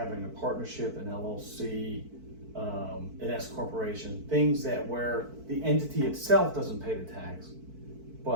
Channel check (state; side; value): late; left; 4.5 ms